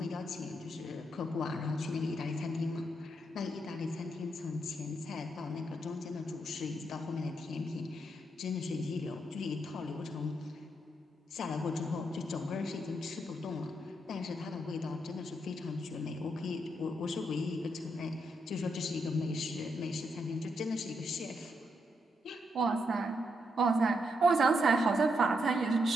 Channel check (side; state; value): both; normal; correlation 0.79